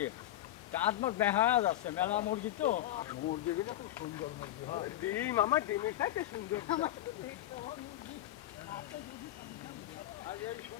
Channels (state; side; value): quieter; right; 13.8 dB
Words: দাঁত মাছ দেখা যাচ্ছে মেলা মুরগি তো মুরগিগুলো খুব সুন্দর মুরগি হয় ডিম আমার ডিমের সাথে সুন্দর আর এই